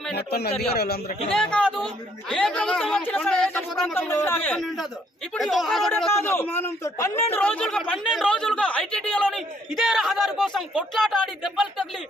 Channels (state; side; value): normal; both; correlation 0.67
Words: చర్య. ఇదే కాదు, ఏ ప్రభుత్వం వచ్చినా సరే ఇప్పుడు ఒక్కరోడే కాదు 12 రోజులుగా ఐటీడీలోని ఇదే రహదారి కోసం కొట్లాట ఆడి దెబ్బలు తగిలి